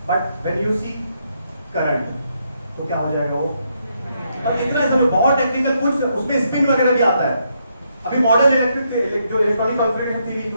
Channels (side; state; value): both; inverted; correlation -0.77